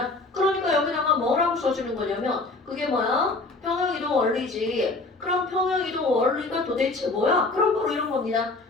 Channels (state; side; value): quieter; right; 3.3 dB